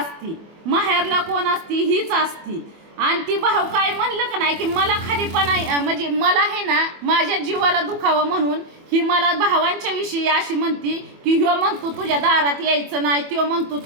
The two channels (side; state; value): left; late; 24 ms